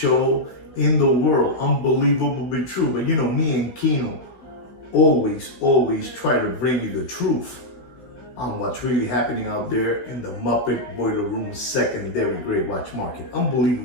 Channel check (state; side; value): late; right; 16 ms